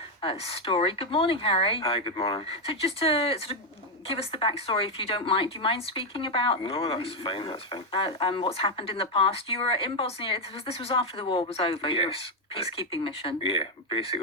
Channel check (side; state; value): both; normal; correlation 0.04